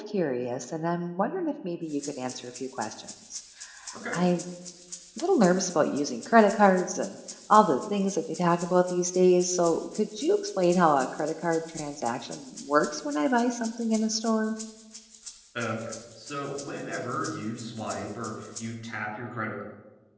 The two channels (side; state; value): both; identical; correlation 1.00